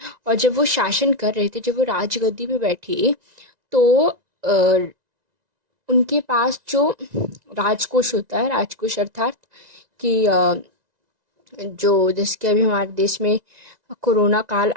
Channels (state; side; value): late; left; 1.9 ms